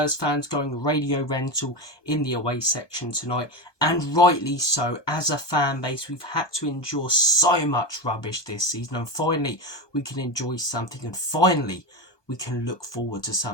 fans going radio rental in the away section tonight, and rightly so. As a fan base, we've had to endure so much rubbish this season, and finally we can enjoy something, and finally we can look forward to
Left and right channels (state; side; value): late; right; 1.2 ms